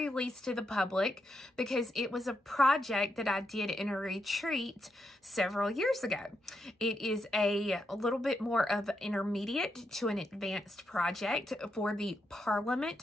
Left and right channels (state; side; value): normal; both; correlation 0.83